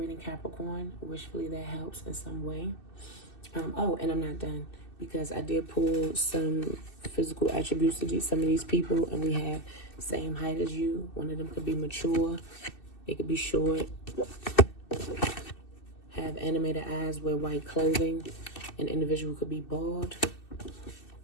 Capricorn. Wishfully that helps in some way. Oh, and I'm not done, because I did pull some physical attributes to some of these people, and we have same height as you. One of them could be mature. They could be short. Have animated eyes, wear white clothing. An individual could be bald.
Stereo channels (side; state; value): right; late; 2.6 ms